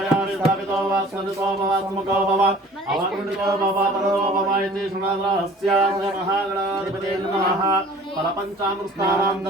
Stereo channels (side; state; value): both; normal; correlation 0.48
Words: स्थापितो वा स्मृतो वा स्मुखो भव अवकुण्डितो भव परो भव इति शृणुरहस्यास्य महागणाधिपते नमः फलपञ्चामृतानां